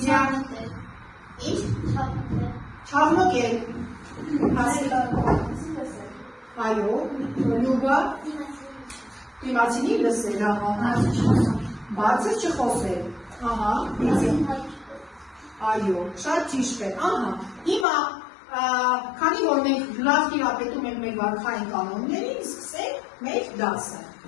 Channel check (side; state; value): right; drops out; at 17.9 s